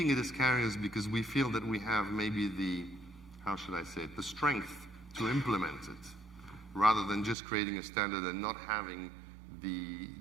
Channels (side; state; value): left; drops out; at 7.4 s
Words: it as carriers because we feel that we have maybe the strength to implement it, rather than just creating a standard and not having the